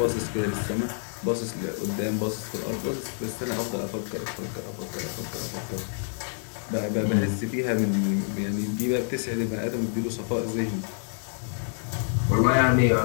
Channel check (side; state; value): right; silent; digital silence